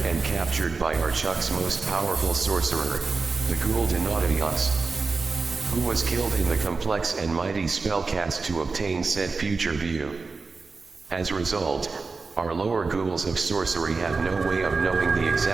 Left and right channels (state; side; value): quieter; left; 4.2 dB